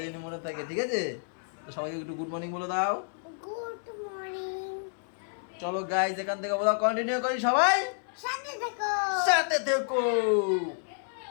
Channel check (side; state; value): right; silent; 58 dB below the other